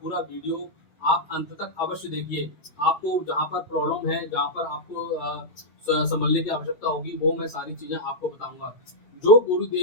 पूरा वीडियो आप अंत तक अवश्य देखिए। आपको जहाँ पर प्रॉब्लम है, जहाँ पर आपको संभलने की आवश्यकता होगी, वो मैं सारी चीजें आपको बताऊंगा, जो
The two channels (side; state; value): right; late; 7.8 ms